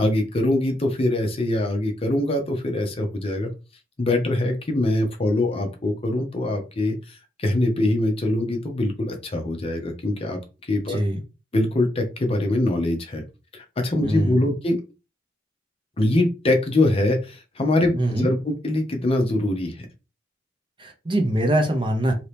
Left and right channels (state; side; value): normal; both; correlation 0.80